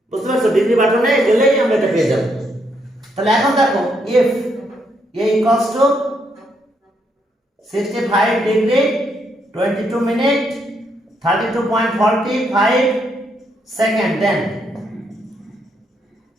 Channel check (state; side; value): normal; both; correlation 0.76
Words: বুঝতে পারছো? ডিগ্রি বাটনে গেলেই আমরা এটা পেয়ে যাবো। তাহলে এখন দেখো, if a equals to 65 degree 22 minute 32.45 second,